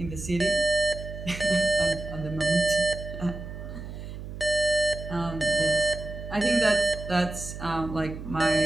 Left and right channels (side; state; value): right; noise; hum, 10 dB below the sound